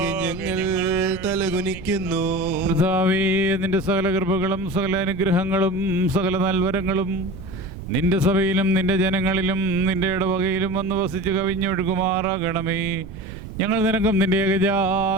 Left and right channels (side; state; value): right; noise; rumble, 13 dB below the sound